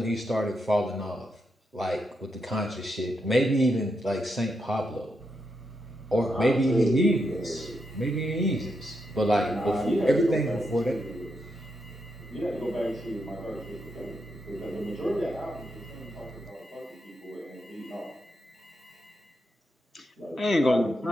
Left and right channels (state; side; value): normal; both; correlation 0.83